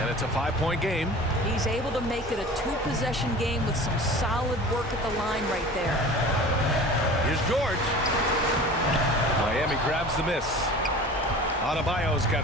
it's a 5-point game. He's able to make it a 2-possession game with some solid work at the line right there. Here's George. Miami grabs the miss. Adebayo's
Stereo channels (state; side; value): normal; both; correlation 0.40